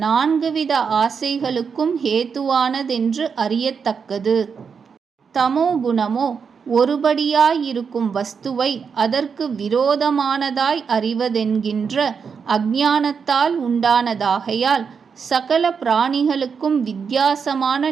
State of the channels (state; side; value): quieter; left; 6.1 dB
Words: 4 வித ஆசைகளுக்கும் ஹேத்துவானதென்று அறியத்தக்கது. தமோ குணமோ ஒருபடியாயிருக்கும் வஸ்துவை அதற்கு விரோதமானதாய் அறிவதென்கின்ற அஞ்ஞானத்தால் உண்டானதாகையால் சகல பிராணிகளுக்கும் வித்தியாசமான